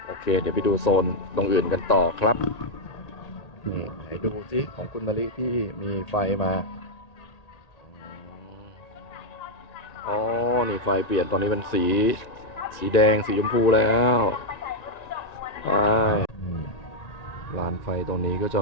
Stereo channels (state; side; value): late; right; 1.9 ms